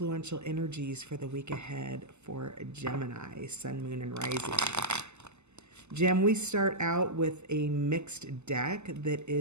energies for the week ahead for Gemini, Sun, Moon, and Rising. Gem, we start out with a mixed deck that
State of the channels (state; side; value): late; left; 0.82 ms